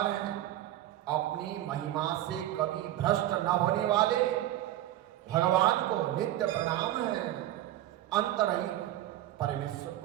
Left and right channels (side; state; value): left; quieter; 13.6 dB